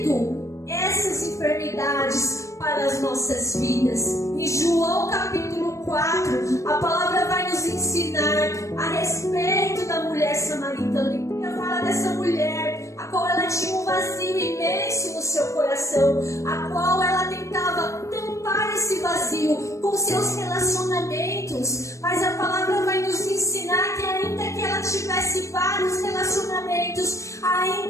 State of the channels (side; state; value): right; late; 0.15 ms